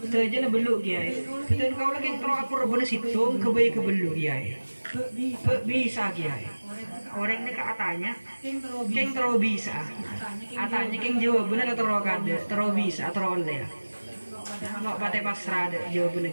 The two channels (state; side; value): inverted; both; correlation -1.00